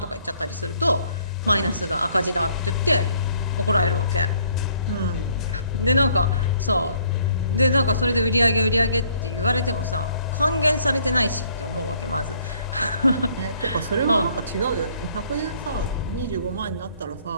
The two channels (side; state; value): both; inverted; correlation -0.63